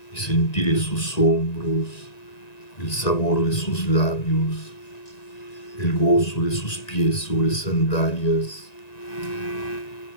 y sentiré sus hombros, el sabor de sus labios, el gozo de sus pies sobre sandalias,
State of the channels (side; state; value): right; late; 1.9 ms